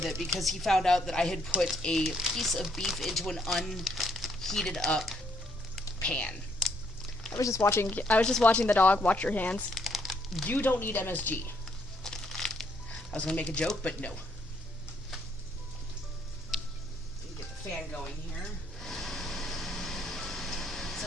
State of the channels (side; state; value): both; normal; correlation 0.71